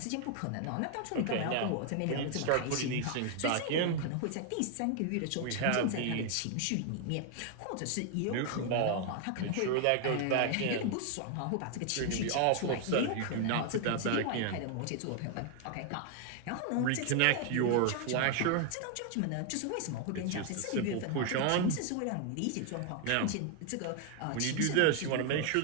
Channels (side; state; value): both; different; correlation 0.00